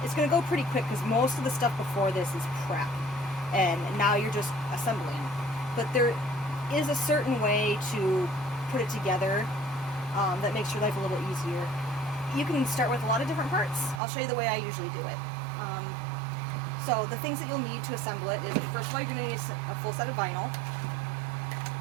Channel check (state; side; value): drops out; left; at 14.0 s